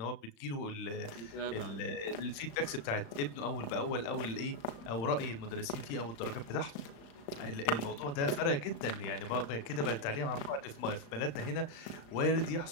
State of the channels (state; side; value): late; right; 35 ms